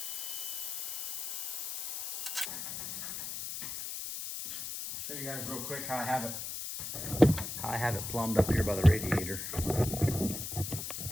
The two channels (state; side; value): noise; left; hiss, 5 dB below the sound